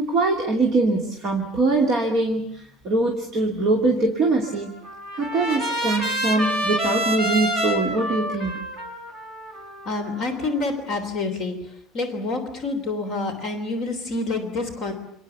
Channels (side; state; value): both; normal; correlation 0.48